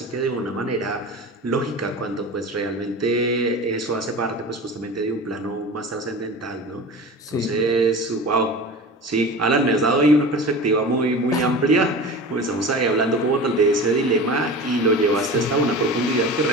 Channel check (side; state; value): both; normal; correlation 0.34